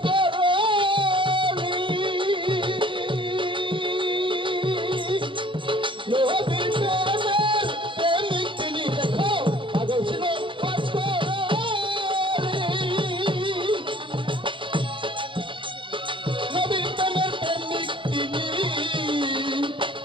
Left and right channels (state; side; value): late; left; 0.24 ms